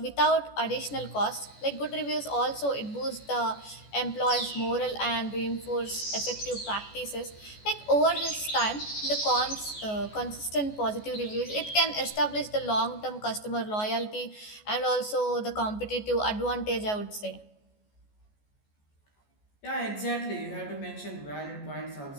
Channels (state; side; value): late; right; 14 ms